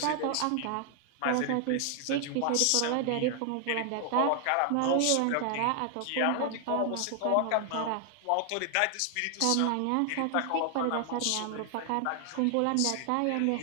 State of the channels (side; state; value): both; different; correlation 0.00